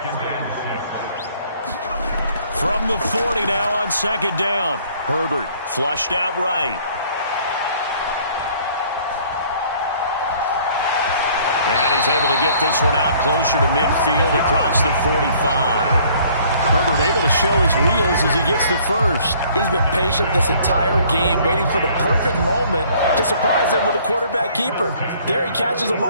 From the 40 now on 2nd down. Herbert flushed out right. And he's able to get this one out closer to midfield across the 45. Herbert able to show his wheels as he gets the first. He's been patient this entire game, waiting for the perfect moment to surprise him with a quarterback keeper. There he catches him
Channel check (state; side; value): inverted; both; correlation -0.58